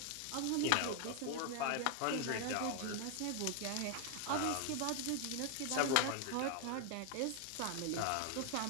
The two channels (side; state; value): both; different; correlation 0.00